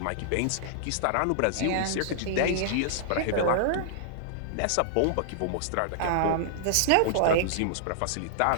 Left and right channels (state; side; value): different; both; correlation -0.01